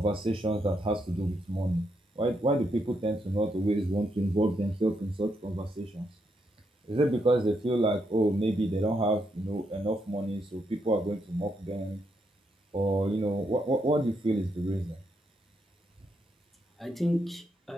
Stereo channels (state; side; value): normal; both; correlation 0.79